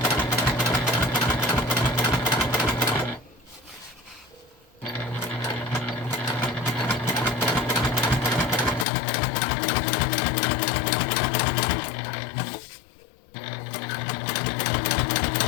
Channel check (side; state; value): right; drops out; at 8.8 s